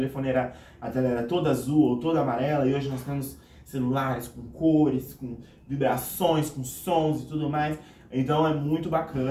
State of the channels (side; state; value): both; identical; correlation 1.00